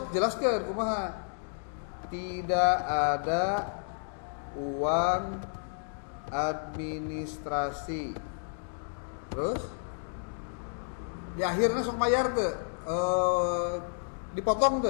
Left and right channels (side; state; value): right; silent; digital silence